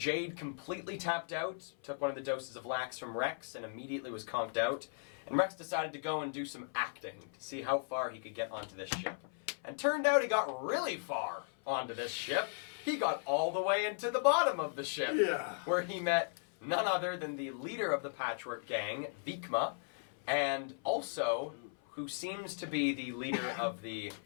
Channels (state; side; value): silent; right; 53 dB below the other